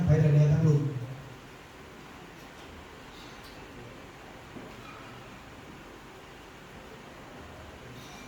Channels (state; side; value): identical; both; correlation 1.00